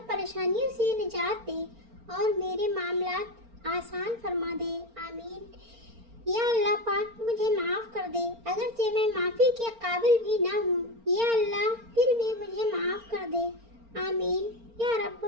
परेशानियों से निजात दे, और मेरे मामलात आसान फरमा दे। आमीन। या अल्लाह पाक, मुझे माफ़ कर दे, अगरचे मैं माफ़ी के काबिल भी ना हूँ। या अल्लाह, फिर भी मुझे माफ़ कर दे। आमीन या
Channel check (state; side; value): late; left; 4.4 ms